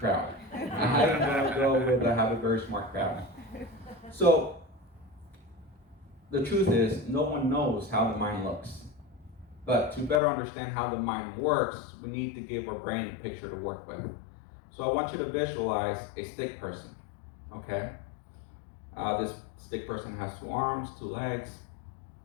I'm going to go with I have a very smart crowd. So the truth is, no one knows how the mind looks. But to better understand how the mind works, we need to give our brain a picture to work with. So I want you to visualize a stick person, okay? This stick person has 2 arms, 2 legs,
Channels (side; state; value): right; drops out; at 10.2 s